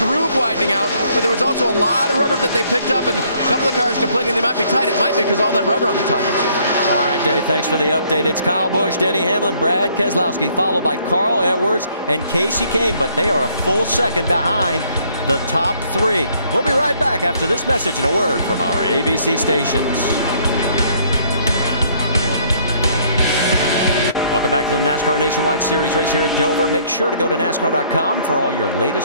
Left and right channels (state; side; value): inverted; both; correlation -0.64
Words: widening out, but there was also a lot of rubber that they picked up, and a couple of cars complaining they might be tight. It might be because all that rubber on the tires. All right, Dave, thanks for the update. It's Kyle Busch, Denny Hamlin, Brad Keselowski, followed by Carl Edwards and Casey Kane, but they are a full second behind the top 3. We'll be right back after this message and a word from our ABC stations. Welcome back to the NASCAR Nationwide Series race here at Dover. Make sure to go to NASCAR.com for all your